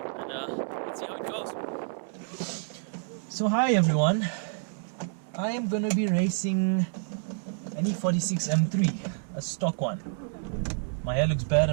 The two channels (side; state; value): left; silent; 59 dB below the other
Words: And let's see how it goes. So hi everyone, I am going to be racing an E46 M3, a stock one. My hair looks bad